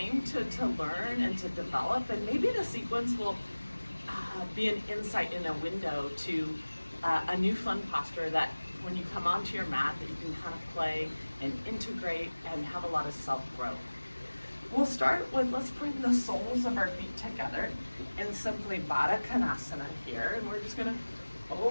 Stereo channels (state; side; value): inverted; both; correlation -1.00